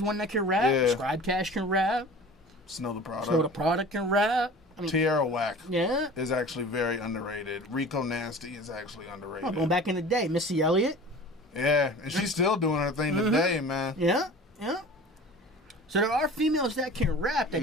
one that can rap. Yeah. Scribe Cash can rap. Snow the Product. So the Product can rap. I mean, Tierra Whack is actually very underrated. Rico Nasty is actually underrated. Going back in the day, Missy Elliott. Yeah, and she's still doing her thing today, man. Yeah. So there are females that can rap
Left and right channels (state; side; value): normal; both; correlation 0.40